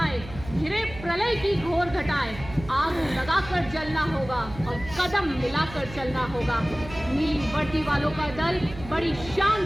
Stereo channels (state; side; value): noise; right; hum, 14 dB below the sound